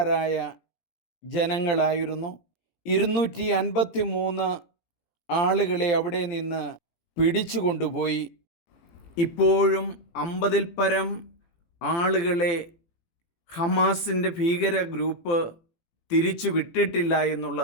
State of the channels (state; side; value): late; right; 18 ms